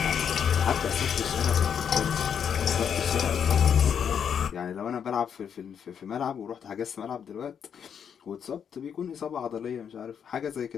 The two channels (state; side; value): quieter; right; 7.8 dB